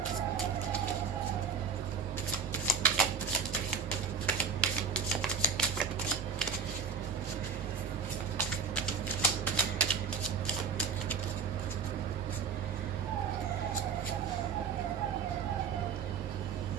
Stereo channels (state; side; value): quieter; left; 5.9 dB